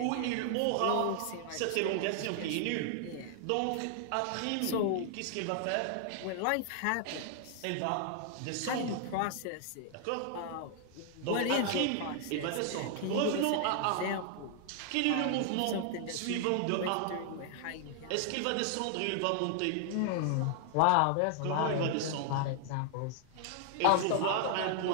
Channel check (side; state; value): both; different; correlation 0.00